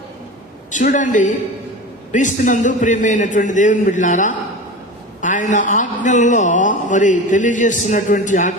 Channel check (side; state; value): both; normal; correlation 0.30